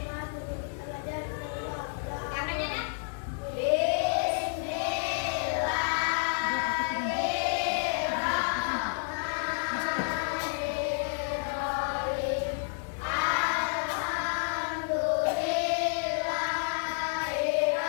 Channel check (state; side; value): silent; right; 58 dB below the other